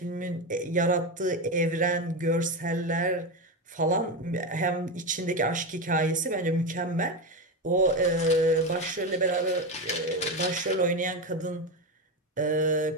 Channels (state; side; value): normal; both; correlation 0.15